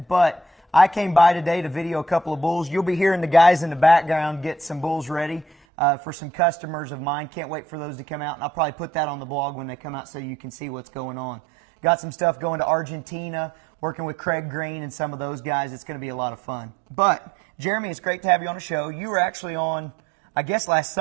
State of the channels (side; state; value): left; drops out; at 5.6 s